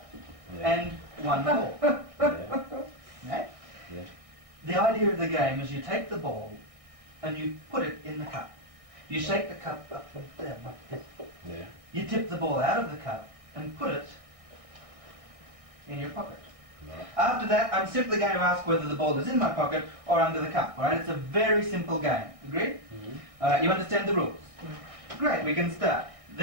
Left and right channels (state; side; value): late; left; 1.6 ms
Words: Yeah. and 1 ball. Yeah. Right? Yeah. The idea of the game is you take the ball and you put it in the cup. You shake the cup up and down like this. Yeah. You tip the ball out of the cup and put it in your pocket. Right. After that, I'm simply going to ask whether the ball is in my pocket or under the cup. All right? It's a very simple game. Agreed? Mm-hmm. All right, you understand the rules? Great, we can start.